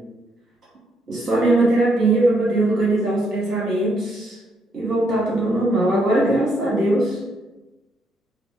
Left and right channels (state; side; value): normal; both; correlation 0.74